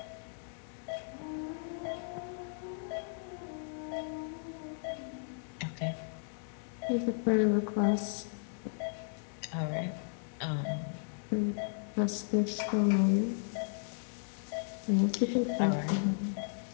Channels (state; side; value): silent; right; 54 dB below the other